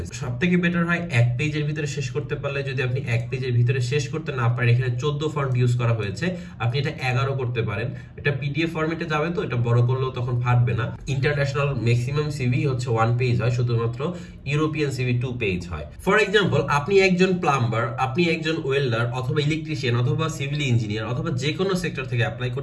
সবথেকে বেটার হয় 1 পেজের ভিতরে শেষ করতে পারলে। যদি আপনি 1 পেজের ভিতরে শেষ করতে না পারেন, এখানে 14 ফন্ট ইউজ করা হয়েছে, আপনি এটা 11 করতে পারেন। এটা পিডিএফ ফরম্যাটে যাবে, তো এটা বড় করলেও তখন ফাটবে না। ইন্টারন্যাশনাল ম্যাক্সিমাম সিভি হচ্ছে 1 পেজ হয়, শুধুমাত্র ইউরোপিয়ান সিভি 2 পেজ হয়। ফর এক্সাম্পল, আপনি একজন প্লাম্বার, আপনি একজন ওয়েল্ডার অথবা ইলেকট্রিশিয়ান অথবা সিভিল ইঞ্জিনিয়ার অথবা যে কোনো সেক্টর থেকে অ্যাপ্লাই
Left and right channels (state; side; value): identical; both; correlation 1.00